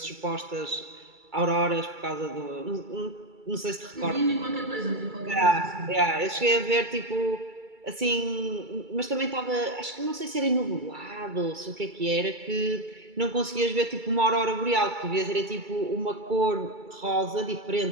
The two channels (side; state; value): left; late; 2.3 ms